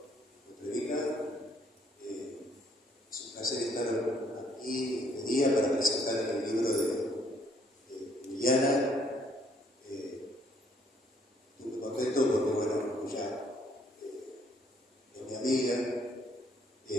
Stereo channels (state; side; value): normal; both; correlation 0.66